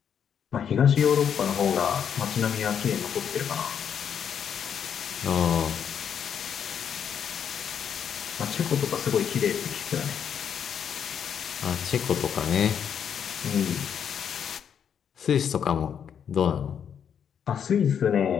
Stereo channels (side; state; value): right; quieter; 8.1 dB